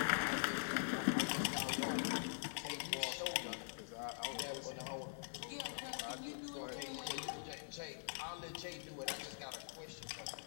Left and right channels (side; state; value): right; silent; digital silence